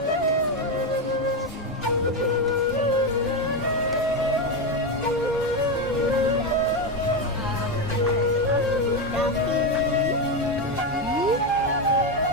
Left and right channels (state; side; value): normal; both; correlation 0.10